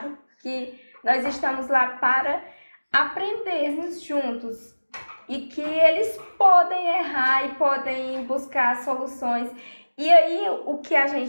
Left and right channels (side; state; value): both; inverted; correlation -1.00